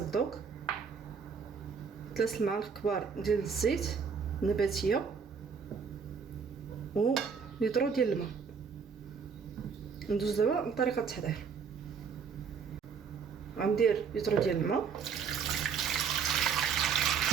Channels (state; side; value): quieter; left; 6.2 dB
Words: الذوق، 3 معالق كبار ديال الزيت نباتيه و لتر ديال الماء. ندوز دابا لطريقه التحضير. غندير لتر ديال الماء،